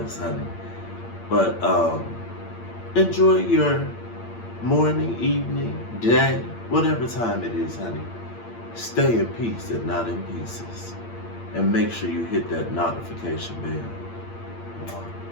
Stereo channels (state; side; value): late; right; 8.7 ms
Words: honey. But enjoy your morning, evening, day, whatever time it is, honey. Stay in peace and not in pieces. And make sure you hit that notification bell.